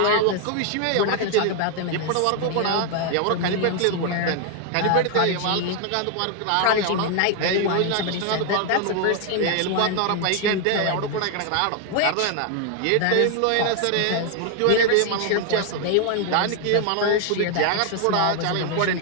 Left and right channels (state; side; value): different; both; correlation 0.00